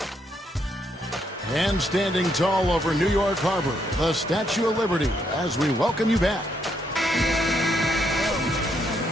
And standing tall over New York Harbor, the Statue of Liberty, as we welcome you back.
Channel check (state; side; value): normal; both; correlation 0.75